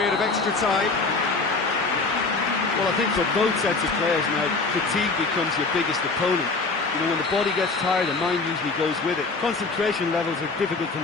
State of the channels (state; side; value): quieter; right; 3.9 dB